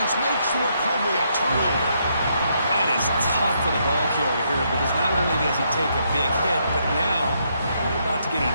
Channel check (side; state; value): both; inverted; correlation -0.75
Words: makes the recovery a turnover. That is tough for the ball carrier here, because not only does he take a big hit, but now you're about to get